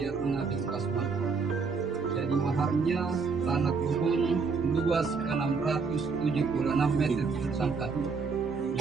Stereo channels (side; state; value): left; quieter; 4.9 dB